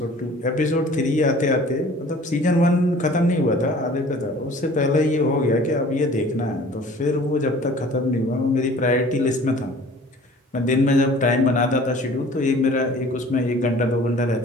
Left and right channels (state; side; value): normal; both; correlation 0.48